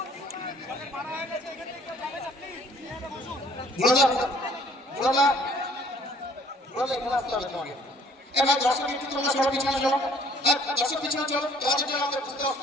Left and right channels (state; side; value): normal; both; correlation 0.57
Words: এবার দর্শক একটু তোমরা সবাই পিছনে চলো। দর্শক পিছনে চলো, তোমাদের জন্য আমাদের বুঝতে